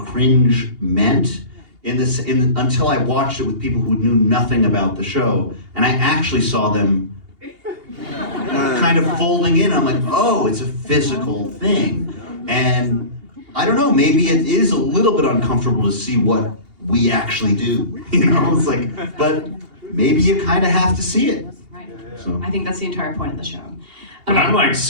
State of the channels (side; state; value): left; late; 2.8 ms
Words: meant until I watched it with people who knew nothing about the show, and I actually saw them kind of folding in. I'm like, oh, it's a physical thing. And I don't know, maybe it is a little bit uncomfortable to see what we actually do, you know? It's like, but maybe you kind of have to see it. Right. So. I think that's the entire point of the show. But I'm like